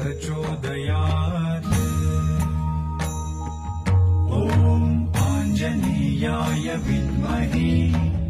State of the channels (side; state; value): both; identical; correlation 1.00